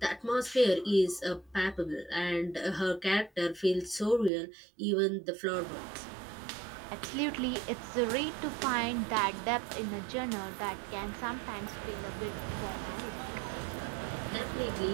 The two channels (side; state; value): left; drops out; at 4.3 s